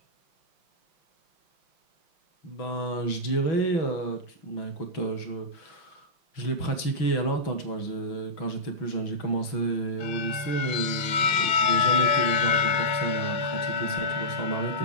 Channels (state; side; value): late; right; 6.1 ms